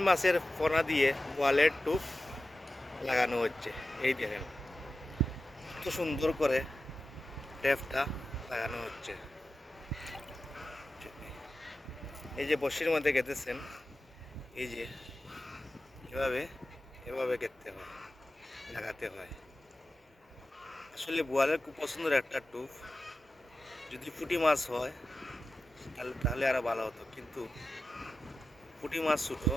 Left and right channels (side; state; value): both; normal; correlation 0.93